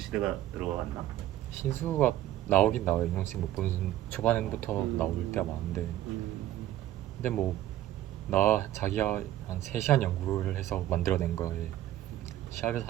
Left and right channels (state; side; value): quieter; left; 13.5 dB